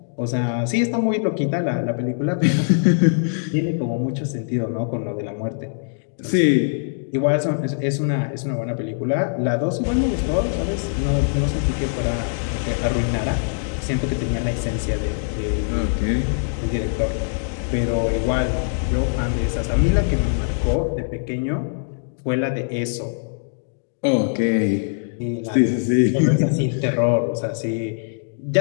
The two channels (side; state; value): right; silent; digital silence